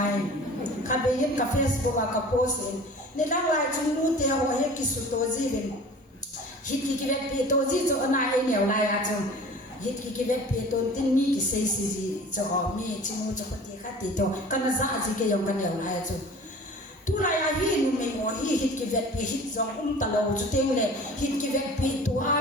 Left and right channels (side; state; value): both; normal; correlation 0.43